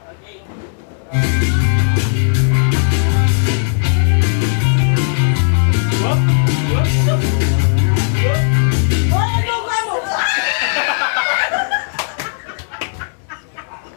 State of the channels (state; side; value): silent; right; digital silence